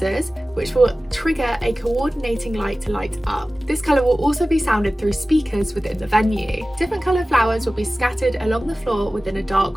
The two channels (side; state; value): both; normal; correlation 0.97